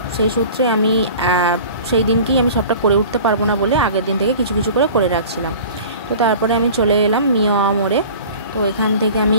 সেই সূত্রে আমি সেই দিনকেই আমি সবটা করে উঠতে পারবো না বলে আগের দিন থেকে কিছু কিছু করে রাখছিলাম। তো তারপরে আমি চলে এলাম মিয়া মোড়ে। তো এখান থেকে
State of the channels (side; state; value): both; inverted; correlation -0.42